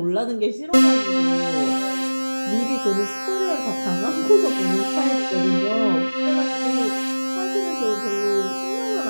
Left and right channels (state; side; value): inverted; both; correlation -1.00